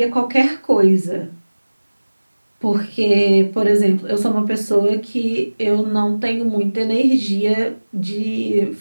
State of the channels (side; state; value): both; inverted; correlation -1.00